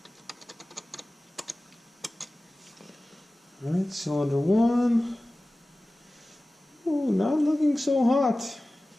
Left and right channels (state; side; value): normal; both; correlation 0.97